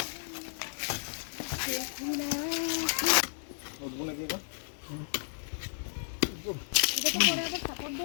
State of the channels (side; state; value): right; silent; digital silence